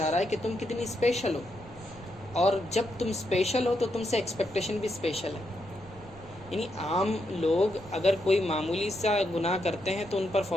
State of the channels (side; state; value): right; noise; rumble, 20 dB below the sound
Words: رہا ہے کہ تم کتنی اسپیشل ہو، اور جب تم اسپیشل ہو تو تم سے ایکسپیکٹیشن بھی اسپیشل ہے۔ یعنی عام لوگ اگر کوئی معمولی سا گناہ کرتے ہیں تو ان پر